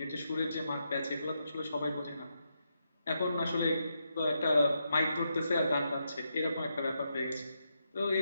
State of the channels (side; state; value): both; inverted; correlation -0.83